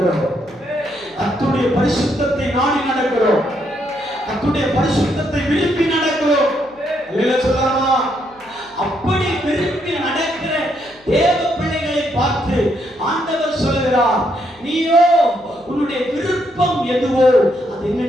கர்த்தருடைய பரிசுத்தத்தை நாடி நடக்கிறோம். கர்த்தருடைய பரிசுத்தத்தை விரும்பி நடக்கிறோம். அல்லேலூயா சொல்லலாமா? அப்படி விரும்பி நடக்கிற தேவ பிள்ளைகளை பார்த்து ஆண்டவர் சொல்கிறார், நீயோ உன்னுடைய விருப்பம் எதுவோ அது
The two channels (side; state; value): left; noise; hum, 30 dB below the sound